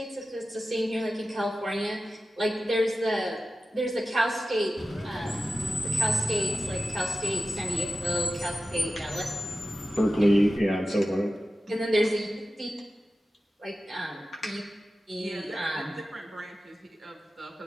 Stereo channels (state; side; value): normal; both; correlation 0.94